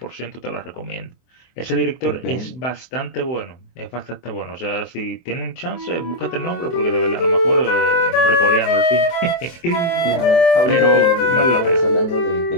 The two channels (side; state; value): right; late; 24 ms